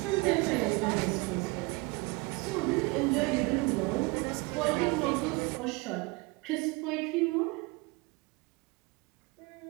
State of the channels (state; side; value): quieter; left; 25.8 dB